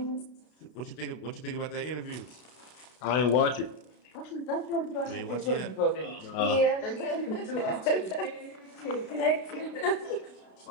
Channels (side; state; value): right; late; 32 ms